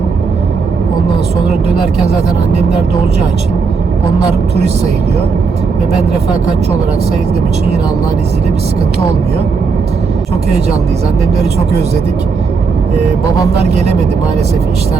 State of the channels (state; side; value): quieter; left; 5.0 dB